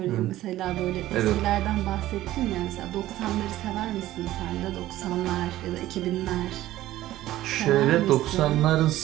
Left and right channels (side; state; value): left; quieter; 14.9 dB